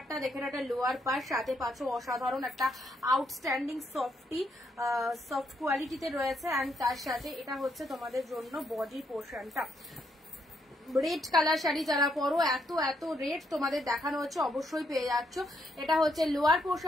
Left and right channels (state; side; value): normal; both; correlation 0.76